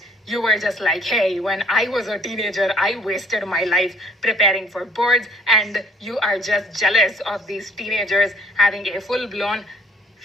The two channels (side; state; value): both; normal; correlation 0.58